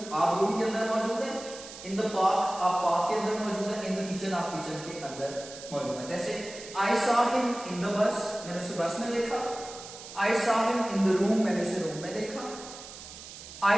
आप रूम के अंदर मौजूद है, इन द पार्क आप पार्क के अंदर मौजूद है, इन द किचन आप किचन के अंदर मौजूद है। जैसे I saw him in the bus, मैंने उसे बस में देखा। I saw him in the room, मैंने उसे रूम में देखा।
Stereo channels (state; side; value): noise; right; hiss, 14 dB below the sound